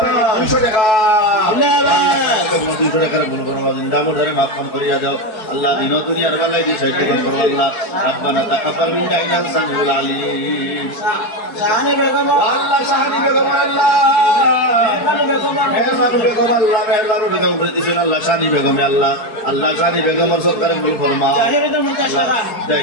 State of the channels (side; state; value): right; late; 4.7 ms